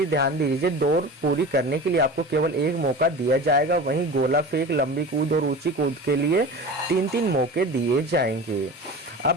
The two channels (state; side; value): normal; both; correlation 0.33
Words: ध्यान दीजिए, दौड़ पूरी करने के लिए आपको केवल 1 मौका दिया जाएगा, वहीं गोला फेंक, लंबी कूद और ऊंची कूद के लिए 3-3 मौके दिए जाएंगे।